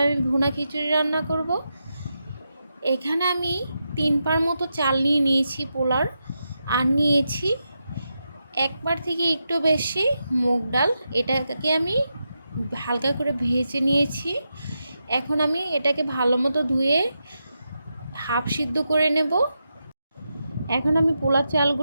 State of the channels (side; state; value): both; inverted; correlation -0.87